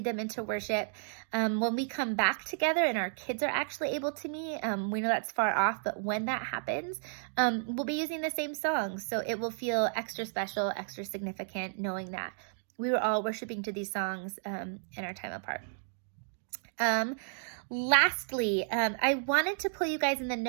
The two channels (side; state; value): left; silent; digital silence